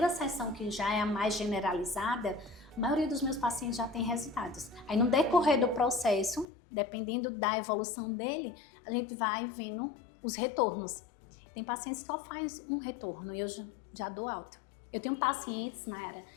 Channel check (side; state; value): right; drops out; at 6.5 s